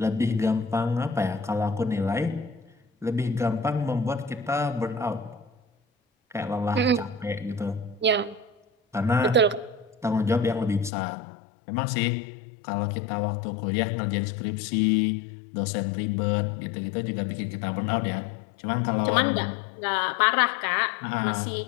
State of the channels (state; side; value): drops out; right; at 10.9 s